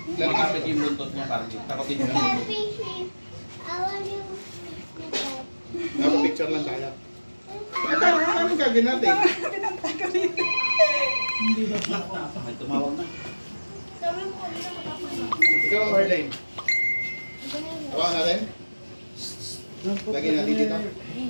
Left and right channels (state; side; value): inverted; both; correlation -1.00